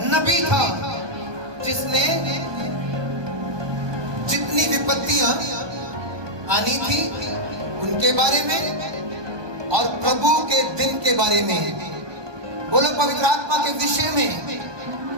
नबी था, जिसने जितनी विपत्तियां आनी थी उनके बारे में और प्रभु के दिन के बारे में, बोलो पवित्र आत्मा के विषय में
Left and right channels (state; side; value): late; left; 1.2 ms